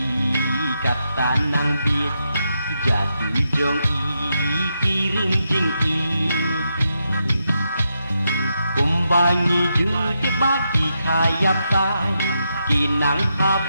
kata nang biết giả tự dòng y kirim jing y kumbangi ju te ba ki khayap tai ki nang ha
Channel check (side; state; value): both; inverted; correlation -0.84